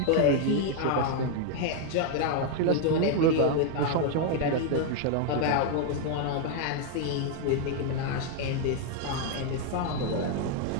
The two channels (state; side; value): different; both; correlation 0.00